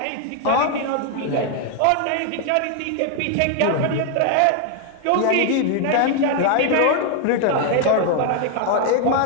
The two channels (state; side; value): different; both; correlation 0.00